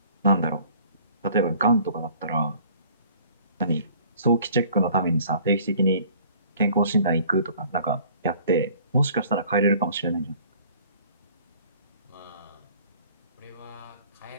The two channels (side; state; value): both; inverted; correlation -0.53